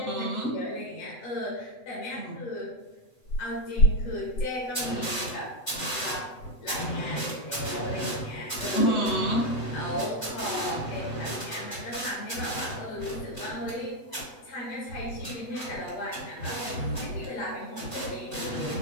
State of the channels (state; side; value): late; right; 8.0 ms